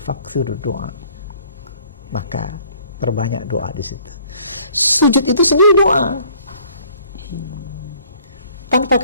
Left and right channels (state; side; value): inverted; both; correlation -0.59